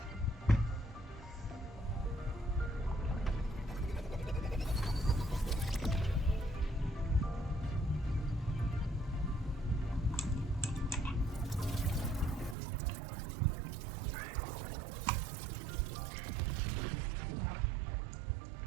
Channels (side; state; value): left; drops out; at 12.6 s